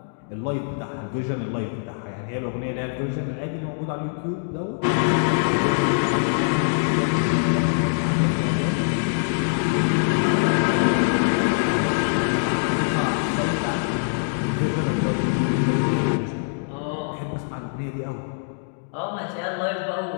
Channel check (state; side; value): silent; right; digital silence